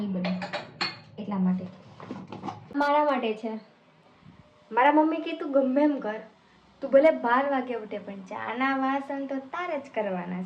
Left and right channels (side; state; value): both; identical; correlation 1.00